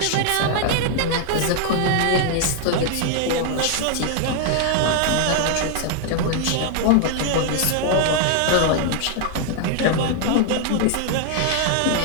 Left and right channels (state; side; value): different; both; correlation 0.00